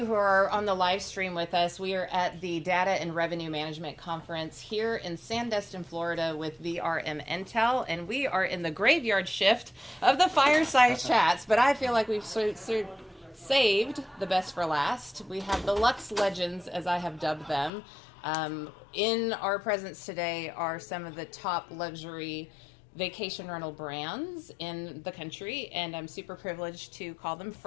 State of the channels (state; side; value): drops out; right; at 17.7 s